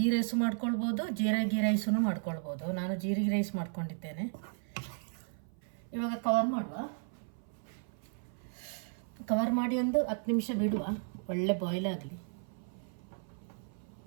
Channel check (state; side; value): silent; left; 55 dB below the other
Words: ರೈಸು ಮಾಡ್ಕೊಳ್ಬೋದು, ಜೀರಿಗೆ ರೈಸೂ ಮಾಡ್ಕೊಳ್ಬೋದು. ನಾನು ಜೀರಿಗೆ ರೈಸ್ ಮಾಡ್ಕೊಂಡಿದ್ದೇನೆ. ಇವಾಗ ಕವರ್ ಮಾಡಿ 10 ನಿಮಿಷ ಬಿಡುವ. ಒಳ್ಳೆ ಬಾಯ್ಲ್ ಆಗಲಿ.